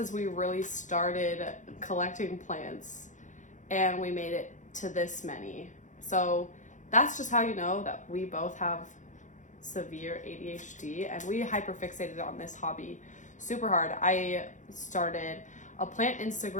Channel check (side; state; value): right; late; 0.36 ms